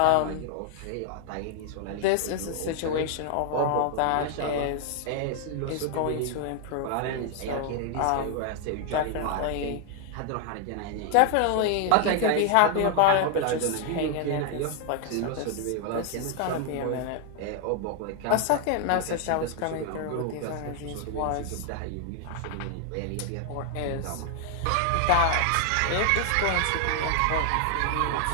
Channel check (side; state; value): both; different; correlation 0.00